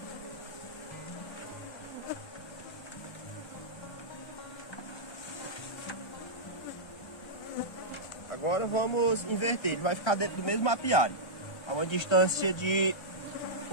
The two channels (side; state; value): right; late; 1.3 ms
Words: Agora vamos inverter, ele vai ficar dentro do mesmo apiário, a uma distância de